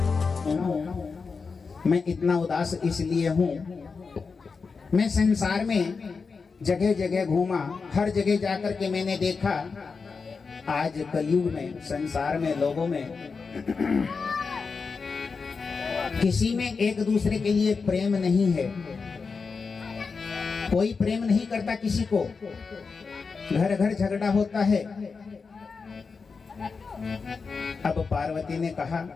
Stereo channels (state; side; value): quieter; right; 4.9 dB